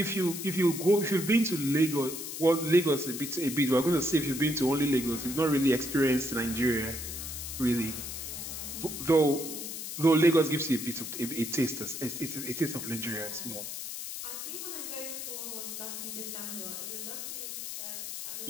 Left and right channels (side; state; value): left; noise; hiss, 7 dB below the sound